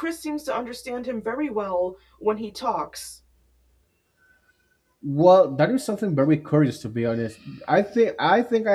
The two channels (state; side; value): identical; both; correlation 1.00